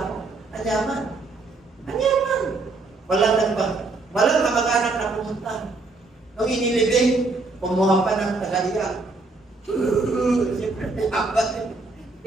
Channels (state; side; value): quieter; left; 3.5 dB